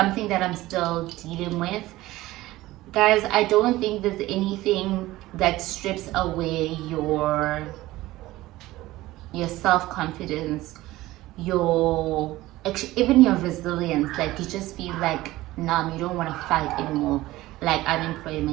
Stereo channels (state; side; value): quieter; left; 17.4 dB